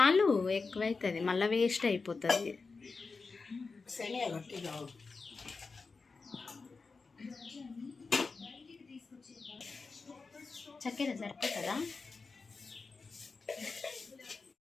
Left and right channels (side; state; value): right; quieter; 4.3 dB